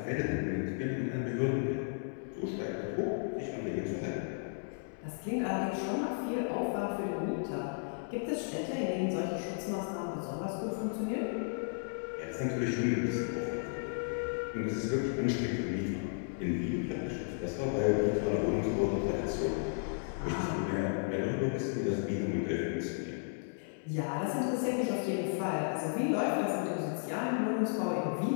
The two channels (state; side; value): silent; right; digital silence